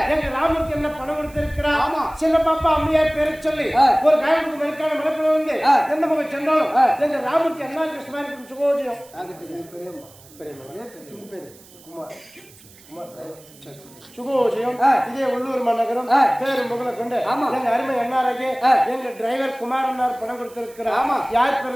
எங்க ராமருக்கு என்ன பணம் கொடுத்திருக்கிறார் சின்ன பாப்பா அம்மையார் பேரை சொல்லி ஒரு காயத்துக்கு மறுக்கான மனப்பட வந்து எந்த மகன் சென்றாலும் எங்க ராமருக்கு என்ன கிருஷ்ணாரி சுகோஜியம் சுகோஜியம் இதே உள்ளூர் மாநகரம் பேரு முகலை கொண்டு எங்க அருமை அண்ணாராகே எங்க டிரைவர் குமார் அண்ணார் பணம் கொடுத்திருக்கிறார் யார்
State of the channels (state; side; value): noise; right; hiss, 24 dB below the sound